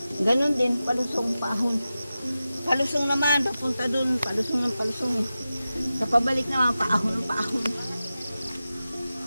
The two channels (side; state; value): both; inverted; correlation -0.94